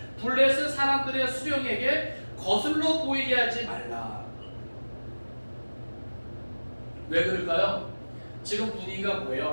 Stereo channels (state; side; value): inverted; both; correlation -1.00